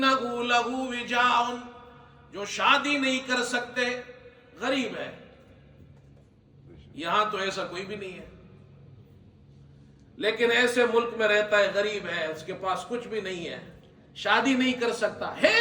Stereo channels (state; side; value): identical; both; correlation 1.00